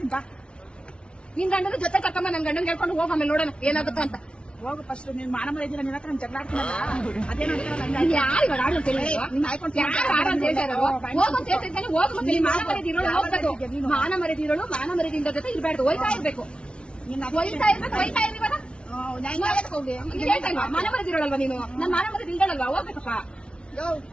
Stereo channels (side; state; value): right; late; 0.057 ms